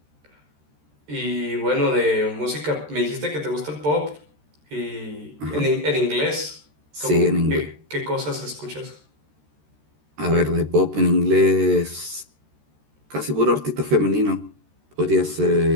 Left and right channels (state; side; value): late; left; 13 ms